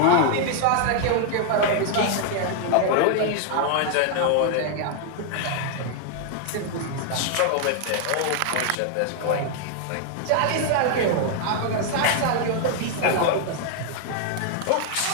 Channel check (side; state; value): both; different; correlation 0.00